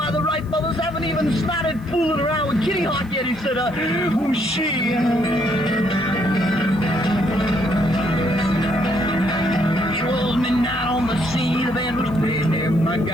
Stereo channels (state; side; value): noise; left; hiss, 29 dB below the sound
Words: the Wright brothers haven't even started fooling around with Kitty Hawk yet." He said, "Who's she?" Midnight on the sea, the band was playing there. My